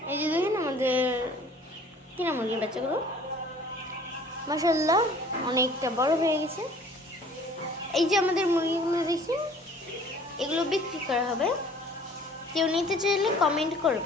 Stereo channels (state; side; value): normal; both; correlation 0.51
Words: এই যে দেখেন আমাদের কিনা মুরগির বাচ্চাগুলো মাশাআল্লাহ অনেকটা বড় হয়ে গেছে। এই যে আমাদের মুরগিগুলো দেখি এগুলো বিক্রি করা হবে। কেউ নিতে চাইলে কমেন্ট